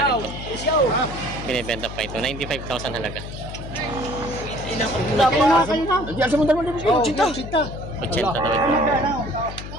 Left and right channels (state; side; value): noise; left; hum, 10 dB below the sound